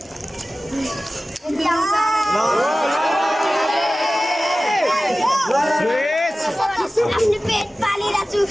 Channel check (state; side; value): normal; both; correlation 0.96